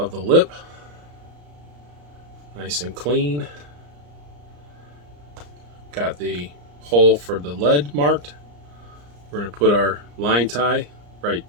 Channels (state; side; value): late; left; 34 ms